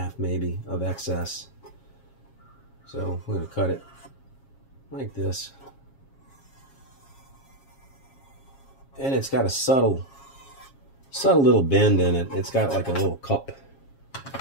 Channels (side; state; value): right; late; 7.4 ms